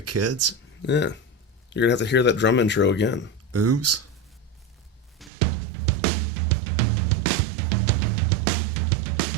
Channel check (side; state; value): left; drops out; at 5.3 s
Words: kids. Yeah. You're going to have to hear that drum intro again. Oops.